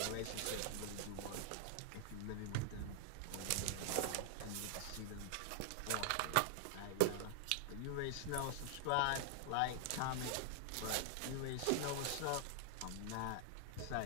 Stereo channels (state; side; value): different; both; correlation 0.00